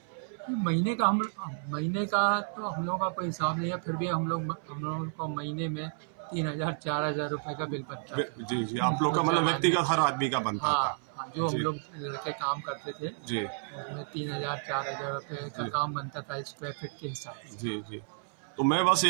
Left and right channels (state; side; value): silent; left; 57 dB below the other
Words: महीने का तो हम लोगों का कोई हिसाब नहीं है, फिर भी हम लोगों को महीने में 3000, 4000 रुपए का बिल बच जाता जी, जी। था आप लोग का उस मतलब ज़माने में। व्यक्तिगत हर आदमी का बनता हाँ, था। हाँ, जो हम जी, लोग लड़के काम करते थे, जी, उसमें 3000, 4000 रुपए का जी, काम बनता था स्क्वायर फीट के हिसाब से। जी, जी। तो मैं बस